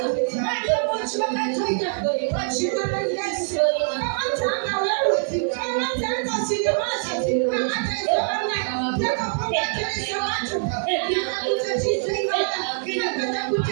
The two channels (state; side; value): silent; left; 63 dB below the other